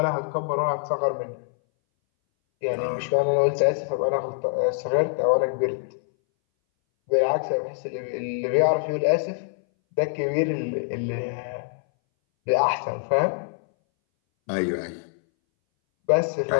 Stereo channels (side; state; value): right; silent; 60 dB below the other